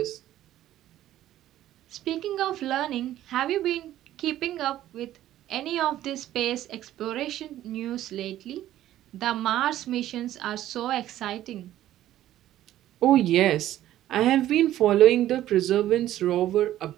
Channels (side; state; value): left; quieter; 13.2 dB